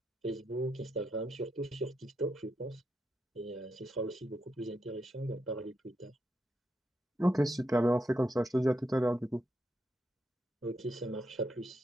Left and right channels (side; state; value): both; normal; correlation 0.82